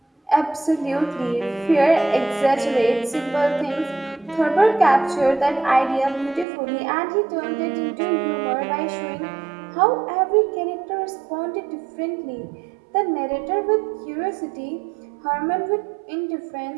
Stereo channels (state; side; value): drops out; left; at 6.5 s